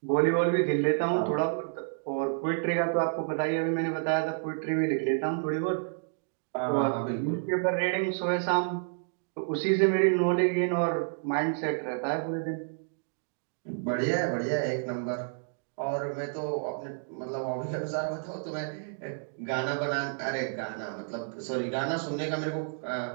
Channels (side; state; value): left; silent; digital silence